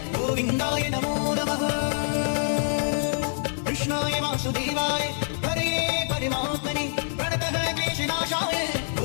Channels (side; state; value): right; silent; 55 dB below the other